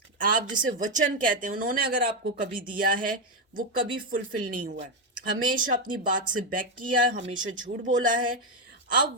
आप जिसे वचन कहते हैं, उन्होंने अगर आपको कभी दिया है वो कभी फुलफिल नहीं हुआ है। हमेशा अपनी बात से बैक किया है, हमेशा झूठ बोला है। अब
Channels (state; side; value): normal; both; correlation 0.06